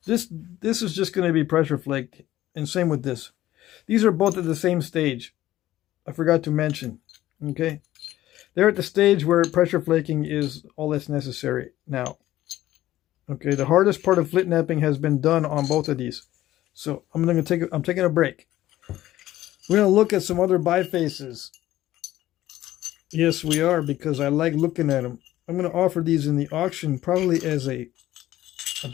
This is just gonna be pressure flaked, and same with this. These are both at the same stage. I forgot to mention. Okay, they're at the stage where pressure flaking is all that's necessary now. Okay, the hardest part of Flintknapping has been done on both of these, so I'm taking a break. We're gonna look at some other bifaces. Yes, we are, because I like looking at them. I'm gonna offer these in the auction, probably as a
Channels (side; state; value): right; quieter; 14.5 dB